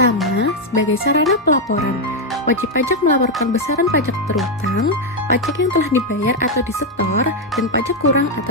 sebagai sarana pelaporan, wajib pajak melaporkan besaran pajak terutang, pajak yang telah dibayar atau disetor, dan pajak kurang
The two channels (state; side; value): normal; both; correlation 0.02